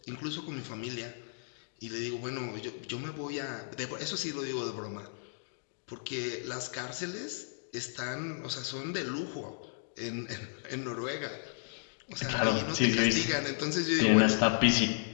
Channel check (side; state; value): right; silent; digital silence